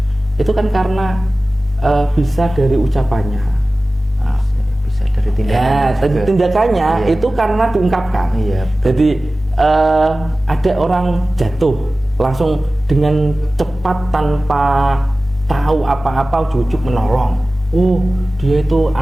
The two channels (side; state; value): both; normal; correlation 0.96